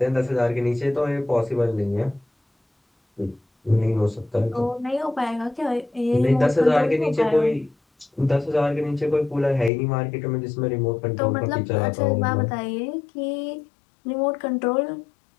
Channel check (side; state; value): right; drops out; at 9.7 s